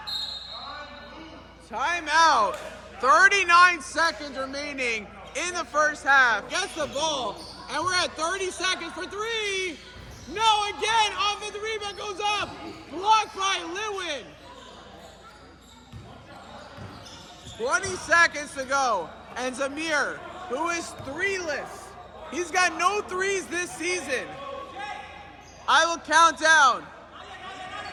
Timeout. 39 seconds remaining in the first half. Gets the ball, and we're at 30 seconds for three. No, again, offensive rebound goes up. Blocked by Lewin. 20 seconds to go. And Zamir, who is three-less. He's got no threes this season. I will count down.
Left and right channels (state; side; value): identical; both; correlation 1.00